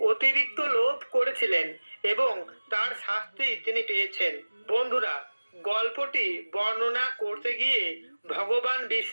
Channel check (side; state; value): both; inverted; correlation -1.00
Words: অতিরিক্ত লোভ করেছিলেন এবং তার শাস্তি তিনি পেয়েছেন। বন্ধুরা, গল্পটি বর্ণনা করতে গিয়ে ভগবান